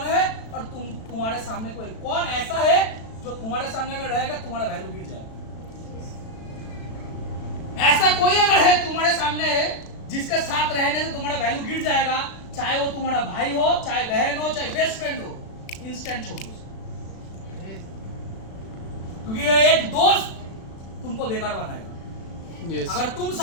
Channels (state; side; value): late; right; 36 ms